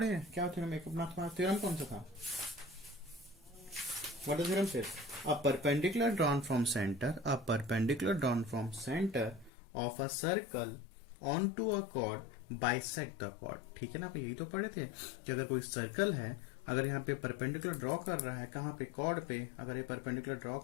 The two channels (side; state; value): right; drops out; at 9.5 s